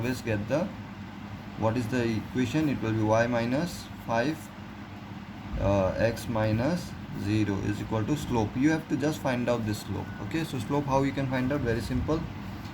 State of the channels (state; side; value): identical; both; correlation 1.00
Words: get the, what is the equation? It will be y minus 5 x minus 0 is equal to slope. You have to just find out this slope, okay? So slope, how you can find out? Very simple,